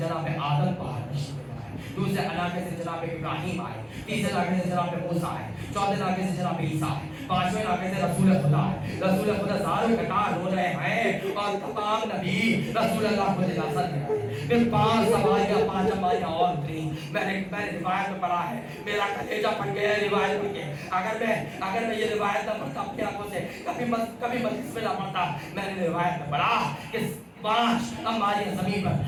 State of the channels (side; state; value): both; identical; correlation 1.00